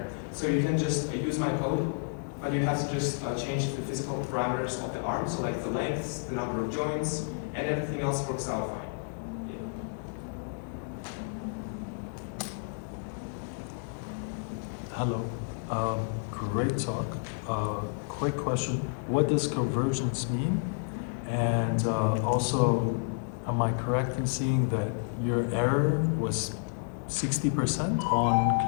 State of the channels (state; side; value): silent; right; digital silence